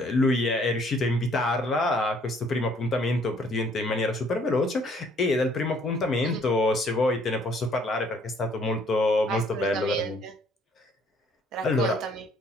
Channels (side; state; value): both; normal; correlation 0.62